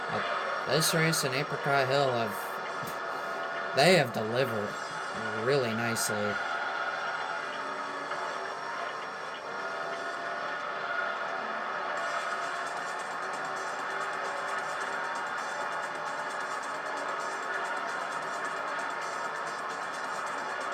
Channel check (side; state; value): both; identical; correlation 1.00